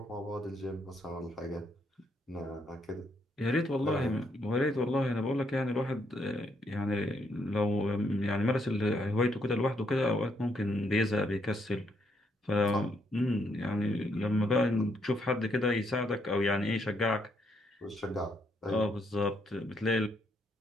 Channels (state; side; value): normal; both; correlation 0.74